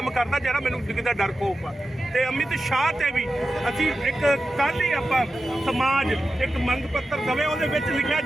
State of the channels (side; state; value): both; normal; correlation 0.92